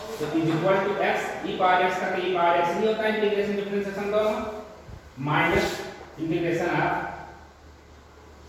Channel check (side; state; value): both; identical; correlation 1.00